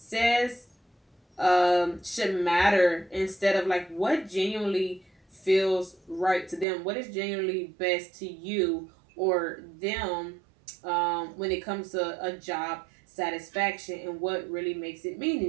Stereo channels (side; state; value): left; drops out; at 6.7 s